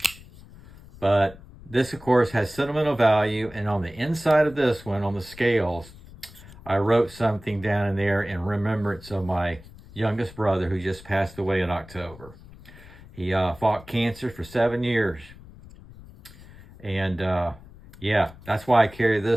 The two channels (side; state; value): left; noise; rumble, 20 dB below the sound